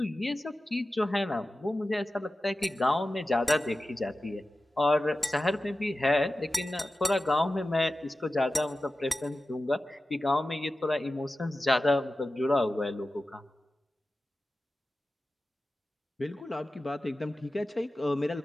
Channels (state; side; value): normal; both; correlation 0.94